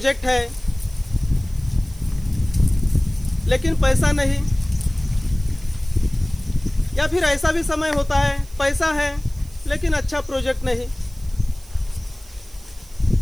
है लेकिन पैसा नहीं, या फिर ऐसा भी समय होता है पैसा है लेकिन अच्छा प्रोजेक्ट नहीं।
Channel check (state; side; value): noise; right; hiss, 23 dB below the sound